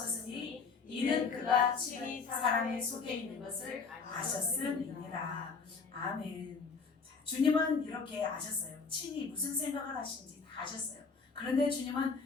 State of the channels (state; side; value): quieter; right; 5.0 dB